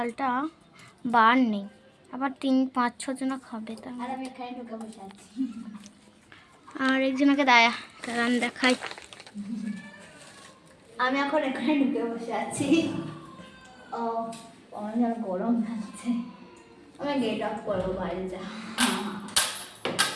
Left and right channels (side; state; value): both; identical; correlation 1.00